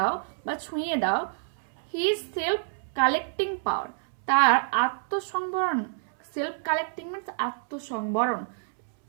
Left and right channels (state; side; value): silent; left; 60 dB below the other